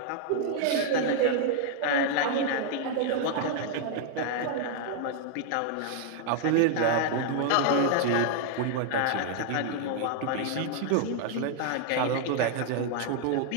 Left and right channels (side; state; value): both; different; correlation -0.01